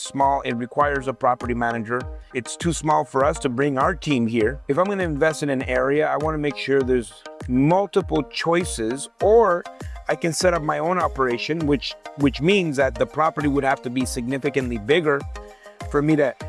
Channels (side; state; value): both; identical; correlation 1.00